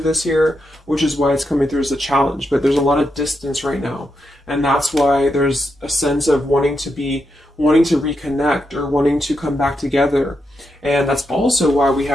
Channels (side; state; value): both; normal; correlation 0.84